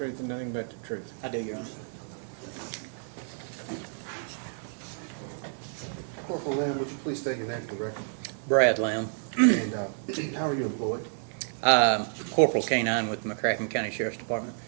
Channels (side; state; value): left; silent; digital silence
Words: and nothing but the truth? I do, Your Honor. Corporal Lamb, would you please state your name for the record? Brad Lamb, And how are you employed? Corporal K-9 with the McCracken County Sheriff's Department.